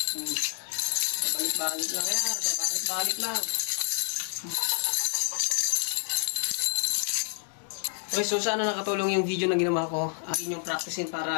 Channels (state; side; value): silent; right; 59 dB below the other